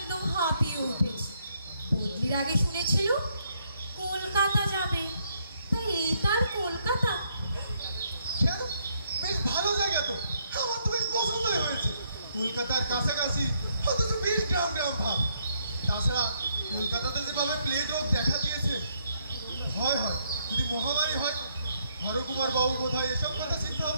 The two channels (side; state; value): both; inverted; correlation -0.72